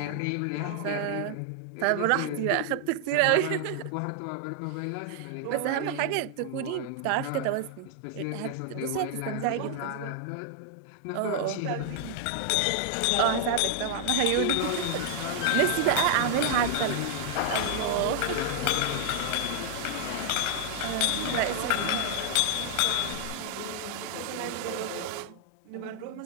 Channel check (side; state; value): both; different; correlation -0.01